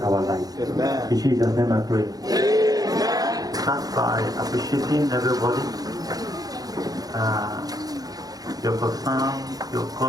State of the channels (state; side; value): late; left; 0.18 ms